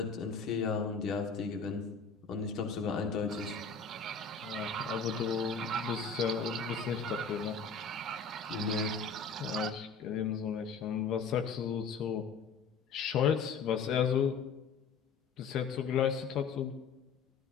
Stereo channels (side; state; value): right; quieter; 5.1 dB